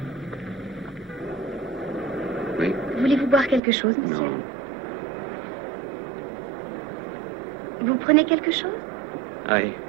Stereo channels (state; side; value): drops out; left; at 3.6 s